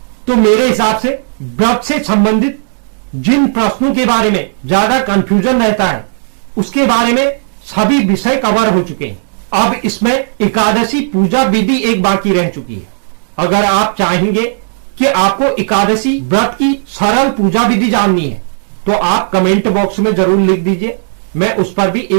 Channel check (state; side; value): silent; left; digital silence